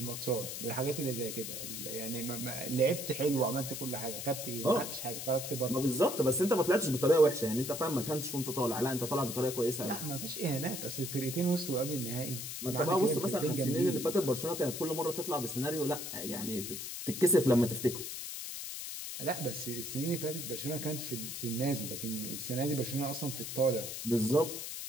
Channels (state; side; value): noise; left; hiss, 6 dB below the sound